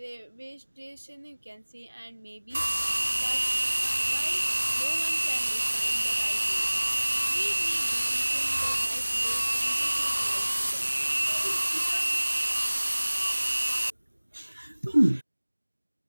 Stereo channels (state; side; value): inverted; both; correlation -1.00